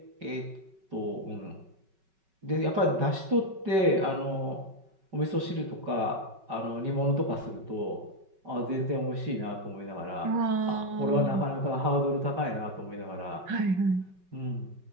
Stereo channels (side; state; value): left; late; 5.3 ms